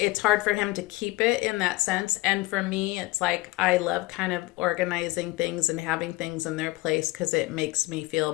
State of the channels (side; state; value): right; quieter; 20.7 dB